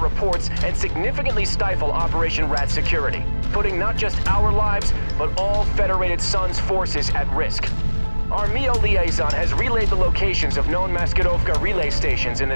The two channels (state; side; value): inverted; both; correlation -1.00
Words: reports and significantly stifle Operation Rat security, putting not just our lives, but all Federated Suns forces at risk. Our MEO liaison has relayed the locations of known Maskirovka relay stations in the